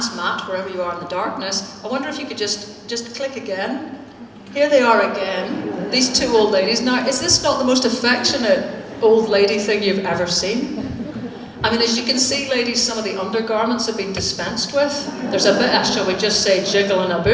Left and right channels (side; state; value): both; identical; correlation 1.00